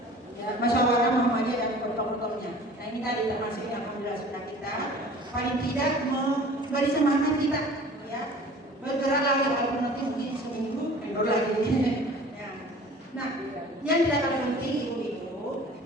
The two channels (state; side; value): normal; both; correlation 0.45